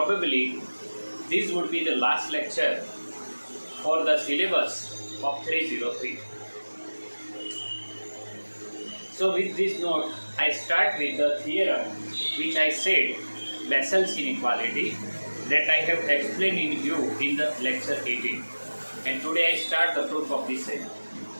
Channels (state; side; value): inverted; both; correlation -1.00